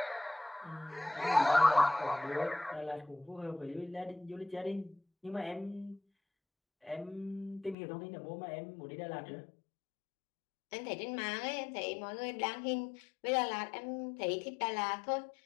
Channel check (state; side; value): drops out; right; at 7.8 s